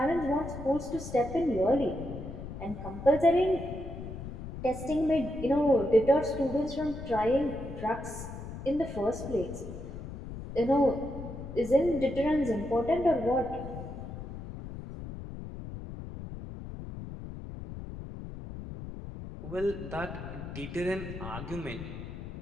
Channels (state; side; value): noise; left; rumble, 10 dB below the sound